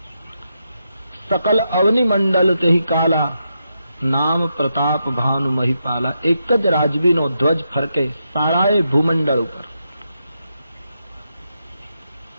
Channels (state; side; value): inverted; both; correlation -0.84